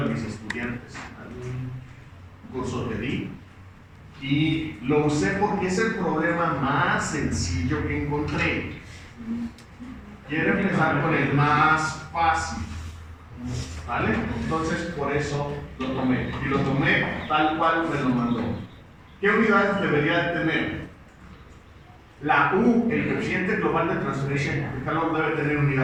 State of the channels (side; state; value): both; identical; correlation 1.00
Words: mis estudiantes en un curso que di. Y lo usé porque es el problema más sencillo que encontré. Quiero empezar con el más fácil. ¿Vale? Entonces por eso lo tomé. Y lo tomé tal cual me lo mandó. ¿Qué unidades debería de tener? La U, el coeficiente global de transferencia de calor, debe tener